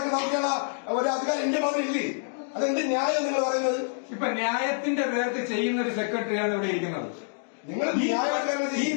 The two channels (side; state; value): right; silent; digital silence